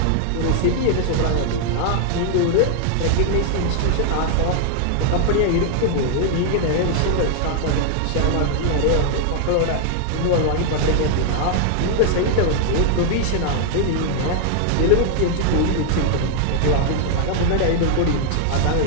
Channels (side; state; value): both; different; correlation 0.00